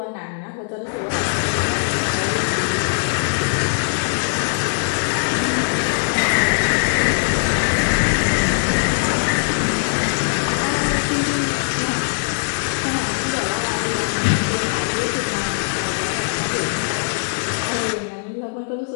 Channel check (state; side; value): silent; right; 65 dB below the other